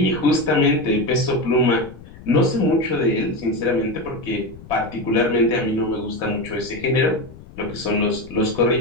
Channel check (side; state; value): left; noise; rumble, 18 dB below the sound